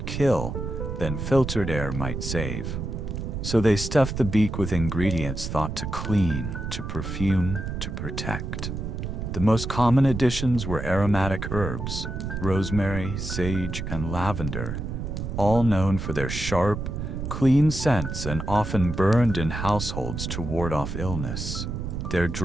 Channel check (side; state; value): right; noise; rumble, 5 dB below the sound